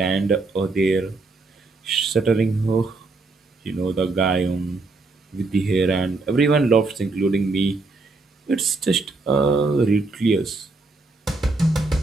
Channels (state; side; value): quieter; left; 3.5 dB